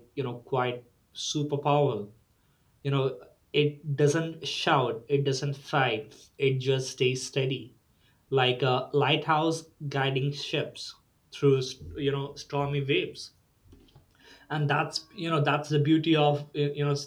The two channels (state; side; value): identical; both; correlation 1.00